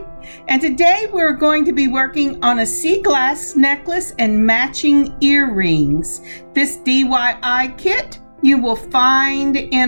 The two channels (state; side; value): inverted; both; correlation -1.00